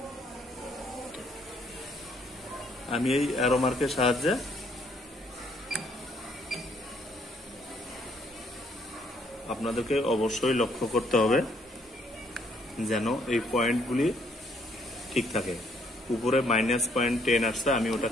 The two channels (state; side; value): normal; both; correlation 0.67